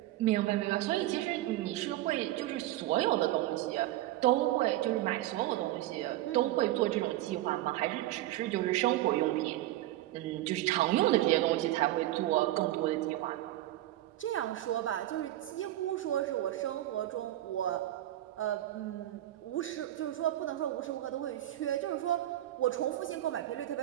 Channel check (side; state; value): left; quieter; 14.9 dB